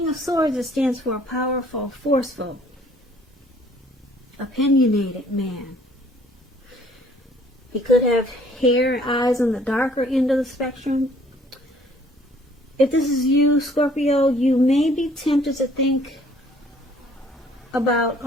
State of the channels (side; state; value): both; normal; correlation 0.59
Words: of Swords, it stands for a powerful, forceful, opinionated man. He could have hair and eyes on the darker end of the spectrum. If this is you, Scorpio, you may be tempted to think about